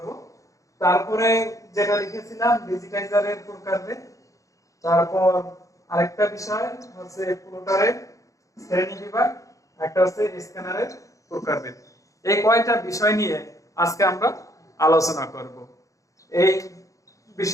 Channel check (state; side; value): late; right; 0.16 ms